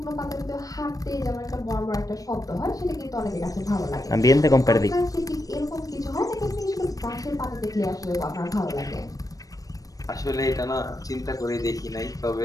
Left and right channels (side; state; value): right; late; 0.17 ms